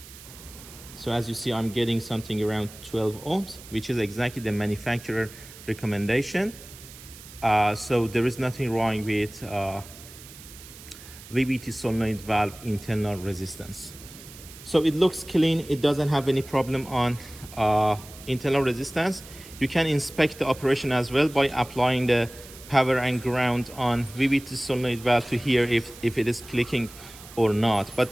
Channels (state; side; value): noise; right; hiss, 18 dB below the sound